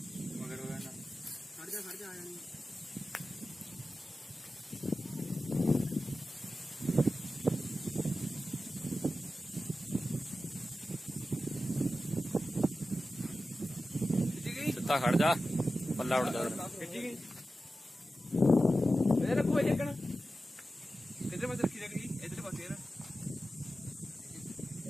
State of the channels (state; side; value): normal; both; correlation 0.93